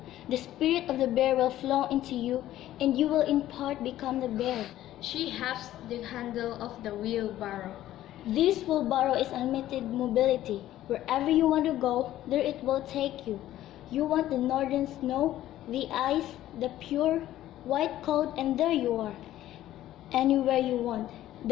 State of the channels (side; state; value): right; quieter; 13.7 dB